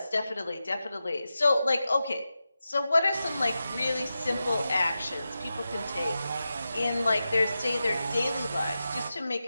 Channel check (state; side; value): inverted; both; correlation -0.91